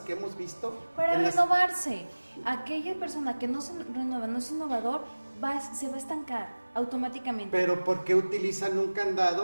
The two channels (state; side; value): inverted; both; correlation -1.00